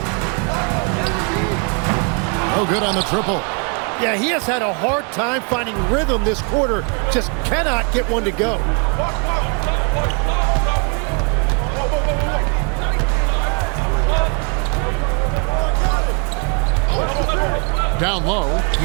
No good on the triple. Yeah, he has had a hard time finding rhythm this quarter. Just cannot get one to go. Down low,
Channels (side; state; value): left; quieter; 37.5 dB